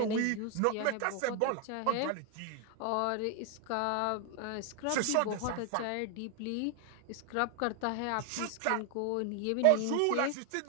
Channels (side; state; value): both; different; correlation 0.00